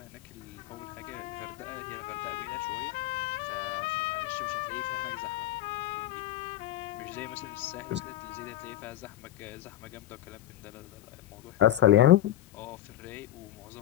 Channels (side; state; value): right; quieter; 13.3 dB